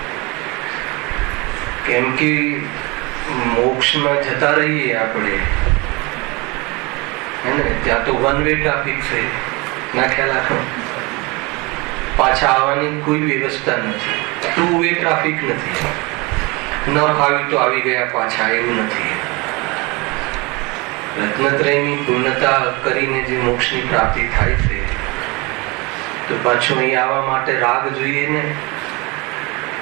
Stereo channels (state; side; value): quieter; left; 26.1 dB